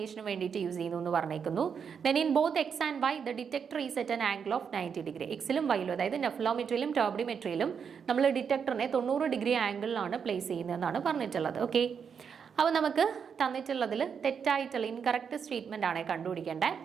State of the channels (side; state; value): left; quieter; 6.8 dB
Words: വേണ്ടിയിട്ട് use ചെയ്യുന്നു എന്ന് പറഞ്ഞേക്കുന്നു. Then in both X and Y the detector is at an angle of 90 degree. എക്സിലും വൈയിലും, അതായത് നെഫ്ലോമെട്രിയിലും ടർബിഡിമെട്രിയിലും നമ്മൾ ഡിറ്റക്ടറിനെ 90 ഡിഗ്രി ആംഗിളിലാണ് പ്ലേസ് ചെയ്യുന്നതെന്നാണ് പറഞ്ഞിട്ടുള്ളത്. ഓക്കെ, അപ്പോൾ നമുക്ക് തന്നിട്ടുള്ളതിൽ തെറ്റായിട്ടുള്ള ഇൻകറക്റ്റ് സ്റ്റേറ്റ്മെന്റ് ആണ് കണ്ടുപിടിക്കേണ്ടത്.